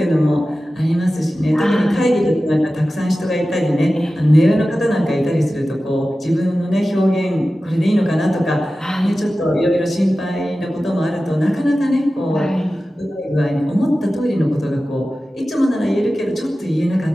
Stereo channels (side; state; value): both; normal; correlation 0.95